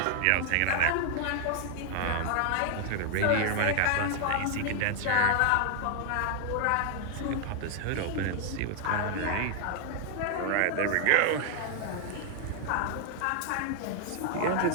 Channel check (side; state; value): both; different; correlation 0.00